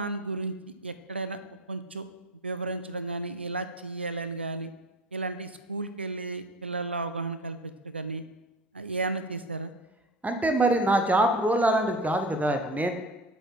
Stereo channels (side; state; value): both; normal; correlation 0.34